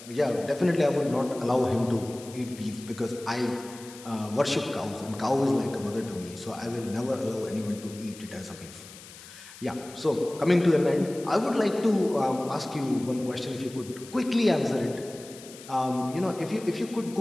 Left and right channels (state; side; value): noise; left; hiss, 17 dB below the sound